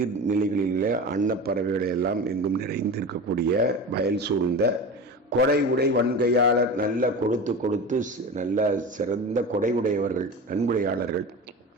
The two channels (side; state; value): both; normal; correlation 0.30